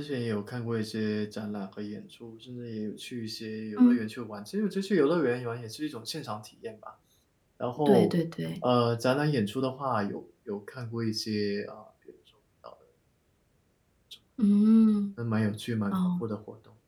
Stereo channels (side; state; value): both; identical; correlation 1.00